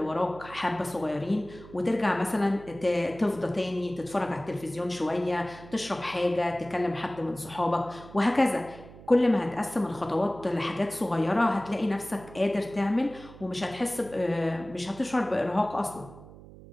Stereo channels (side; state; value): right; noise; hum, 18 dB below the sound